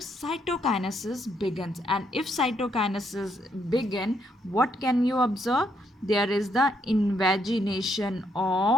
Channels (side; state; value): both; normal; correlation 0.74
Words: begins. And if cytokinesis begin, what can you observe? There is the invagination